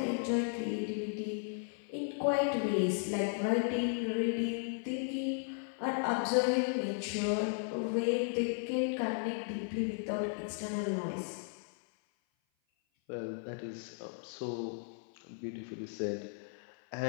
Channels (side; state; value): right; silent; 54 dB below the other